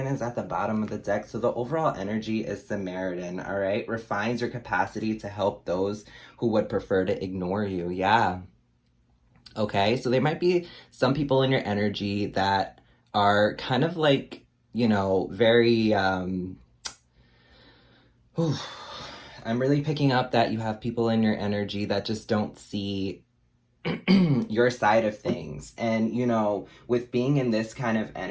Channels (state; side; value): identical; both; correlation 1.00